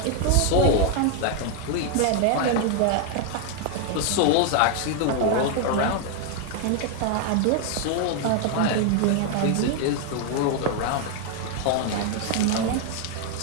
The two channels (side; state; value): both; different; correlation 0.01